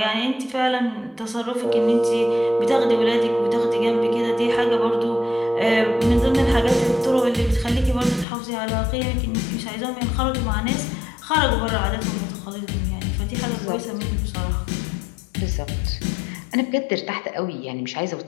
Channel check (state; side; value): drops out; right; at 8.2 s